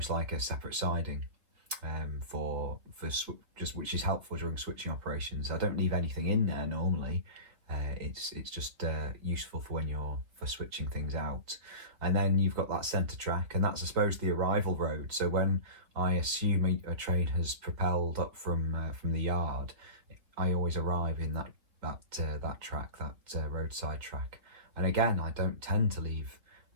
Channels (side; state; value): left; late; 3.9 ms